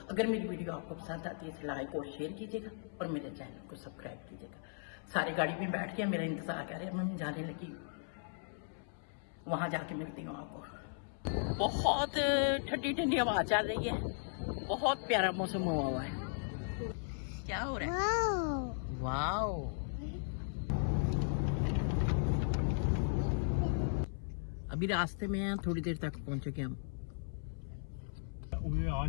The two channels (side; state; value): right; silent; 53 dB below the other